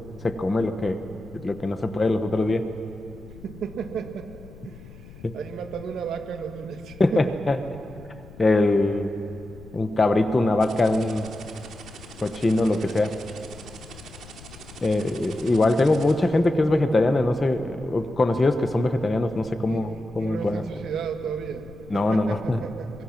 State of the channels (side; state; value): left; noise; rumble, 19 dB below the sound